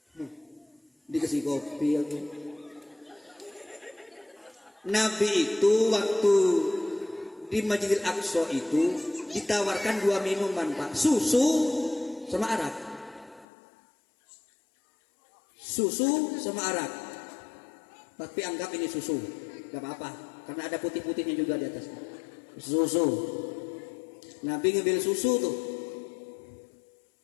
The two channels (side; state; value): right; drops out; at 13.5 s